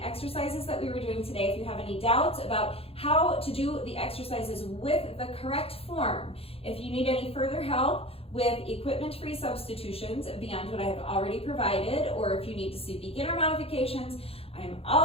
exercises that we were doing today, if you have any doubts about how to do the exercises with the correct form, if you need any further help with equipment-free substitutions beyond what I have already provided, or if you need to see beginner modifications, I am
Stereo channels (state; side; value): late; right; 0.28 ms